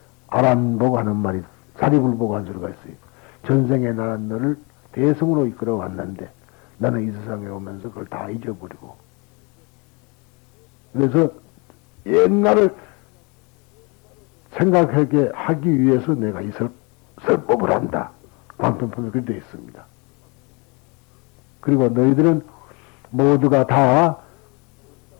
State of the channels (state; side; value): quieter; right; 30.0 dB